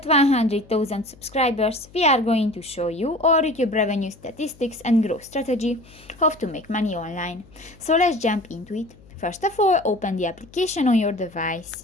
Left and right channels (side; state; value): left; noise; hum, 24 dB below the sound